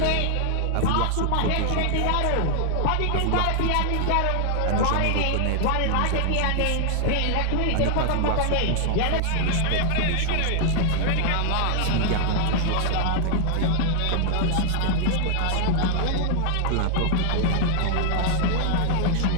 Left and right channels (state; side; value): different; both; correlation 0.00